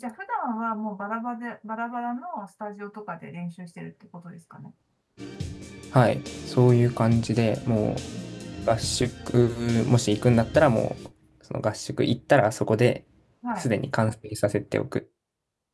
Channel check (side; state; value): both; identical; correlation 1.00